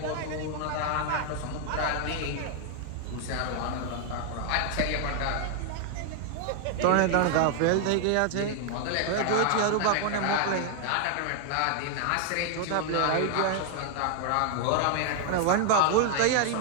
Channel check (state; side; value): different; both; correlation 0.00